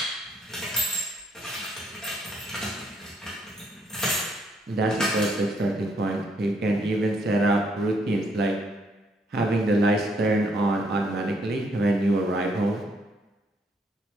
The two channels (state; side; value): normal; both; correlation 0.71